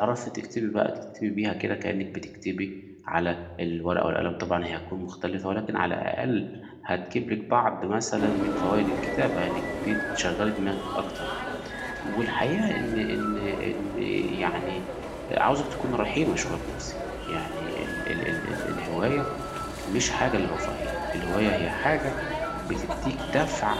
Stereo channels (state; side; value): identical; both; correlation 1.00